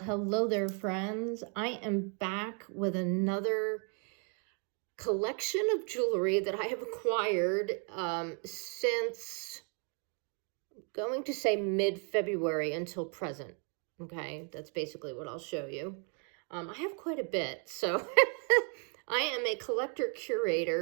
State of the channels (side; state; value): left; quieter; 39.8 dB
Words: there, friends. I am back with another collection of jewelry that I have acquired since going to say mid-February until present. Okay, that's basically what I'll show you. I have quite a bit, so I am a collector